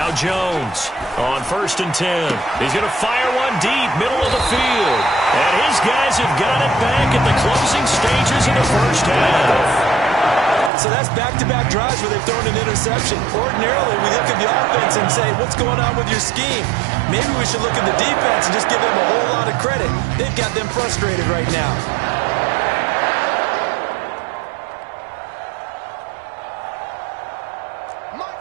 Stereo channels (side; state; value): left; drops out; at 10.7 s